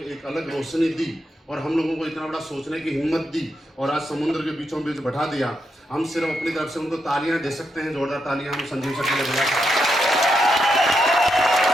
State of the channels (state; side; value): normal; both; correlation 0.83